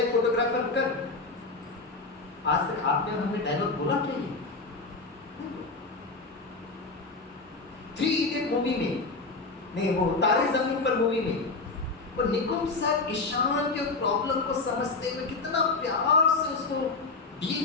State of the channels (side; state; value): right; quieter; 3.8 dB